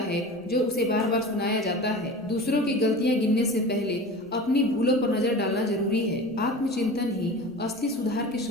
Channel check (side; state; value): both; normal; correlation 0.35